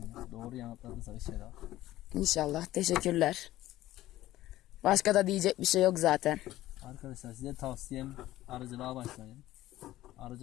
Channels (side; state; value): right; quieter; 15.2 dB